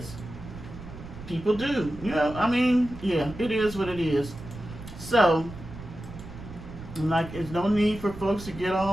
People do. It is what it is. So, there's no need for folks to get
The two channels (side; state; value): right; noise; rumble, 13 dB below the sound